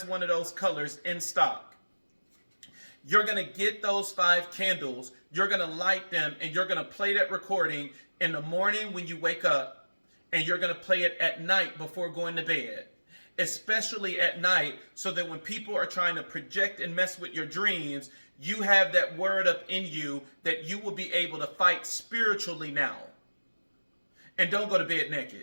one of those colors in stock. You're going to get those 5 candles, you're going to light them, and you're going to play that recording in the morning when you wake up, and you're going to play it at night before going to bed, especially at night, so that when people are trying to project and mess with your dreams, you have that word up in you that you will be able to fight spiritually now. And don't go to bed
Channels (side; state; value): both; inverted; correlation -1.00